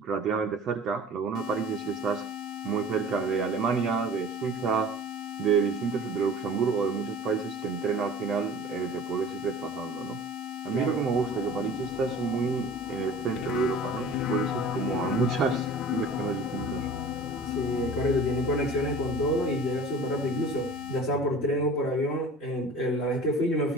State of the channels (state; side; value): normal; both; correlation 0.42